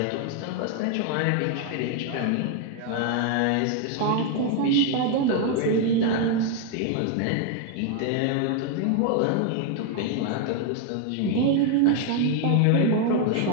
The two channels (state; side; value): different; both; correlation 0.00